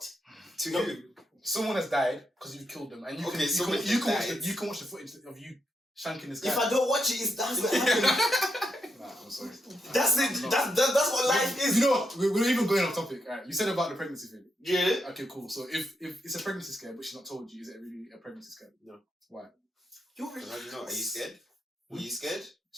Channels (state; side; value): normal; both; correlation 0.82